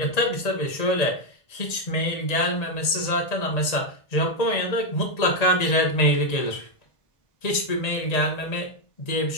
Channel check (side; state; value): right; late; 1.8 ms